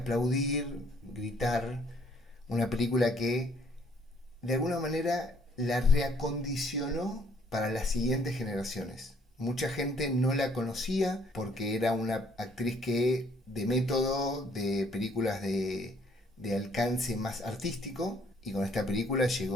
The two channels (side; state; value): both; normal; correlation 0.64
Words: gritar, una película que de alguna manera la reacondicionó para las siguientes generaciones. Mucha gente no la conocía porque era una actriz que de método, de películas de alcance más artístico, y con esta película